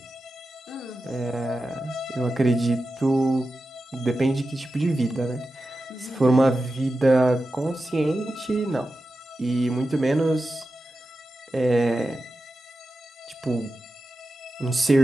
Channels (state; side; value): normal; both; correlation 0.92